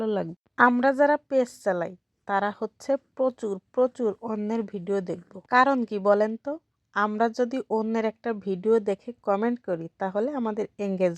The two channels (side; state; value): both; identical; correlation 1.00